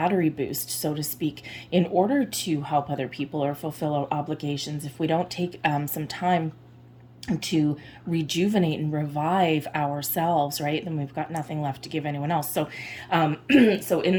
boost, so to speak, in order to help other people or fulfill our obligations. If we don't take some time to rejuvenate and revive ourselves, right, then we've got nothing left to give anyone else. So so in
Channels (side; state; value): both; identical; correlation 1.00